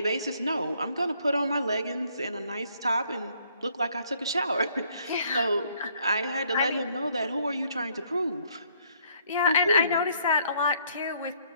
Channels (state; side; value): inverted; both; correlation -0.66